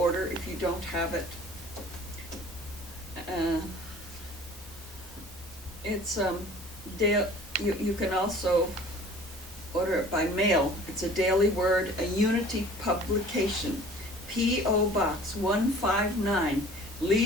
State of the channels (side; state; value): both; normal; correlation 0.47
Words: if you don't have it. You can also order it by mail. It's a Daily Word, a Unity publication, P.O. Box 159,